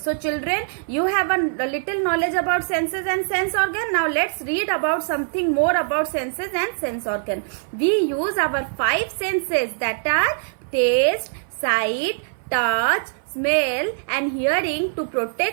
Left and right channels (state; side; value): silent; left; 57 dB below the other